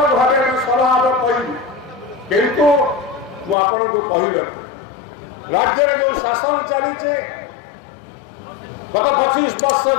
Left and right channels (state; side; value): drops out; right; at 3.6 s